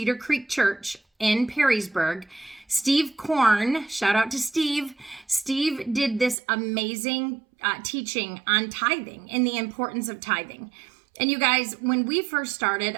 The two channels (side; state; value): left; drops out; at 6.4 s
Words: Creek Church in Perrysburg, Steve Korn, shout out to Steve. Steve did this amazing teaching on tithing and the importance of tithing. And you guys, when we first started,